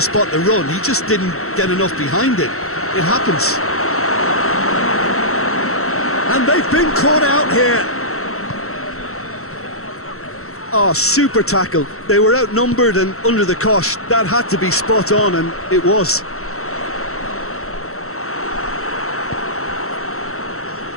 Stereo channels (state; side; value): late; right; 0.63 ms